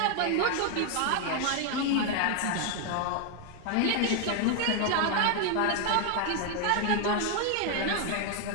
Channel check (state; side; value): different; both; correlation 0.01